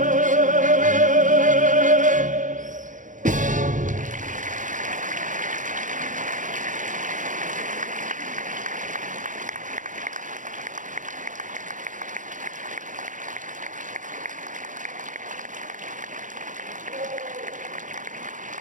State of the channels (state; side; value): late; left; 0.37 ms